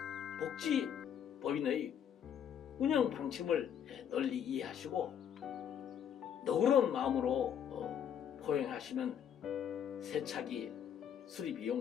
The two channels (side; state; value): right; quieter; 8.8 dB